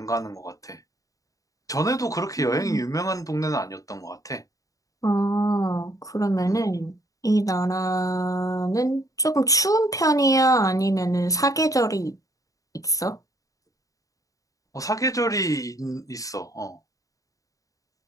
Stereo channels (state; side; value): late; right; 0.16 ms